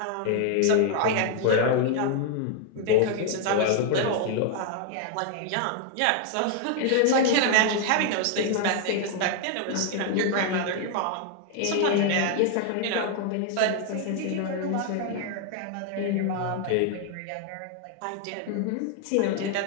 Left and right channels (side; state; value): both; different; correlation 0.00